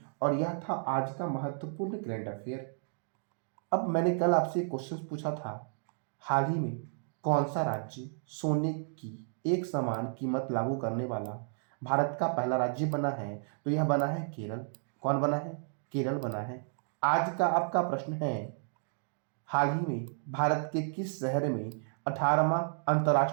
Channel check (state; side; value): silent; left; digital silence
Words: और यह था आज का महत्वपूर्ण करंट अफेयर। अब मैंने कल आपसे एक क्वेश्चन पूछा था, हाल ही में कौन सा राज्य सोने की एक समान कीमत लागू करने वाला भारत का पहला राज्य बना है? तो यह बना है केरल। कौन बना है? केरल बना है। आज का आपका प्रश्न है, हाल ही में भारत के किस शहर में 18वां